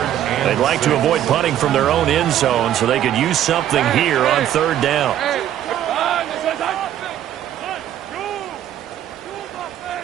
They'd like to avoid punting from their own end zone so they could use something here on 3rd down.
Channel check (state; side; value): quieter; left; 11.4 dB